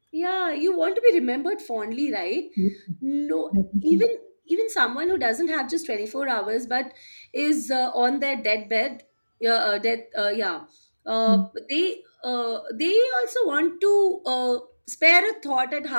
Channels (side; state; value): both; inverted; correlation -1.00